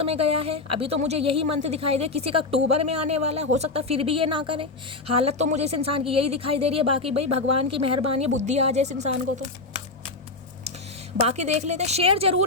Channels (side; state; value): right; quieter; 3.5 dB